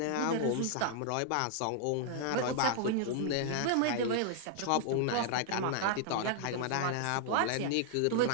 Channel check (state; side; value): different; both; correlation -0.01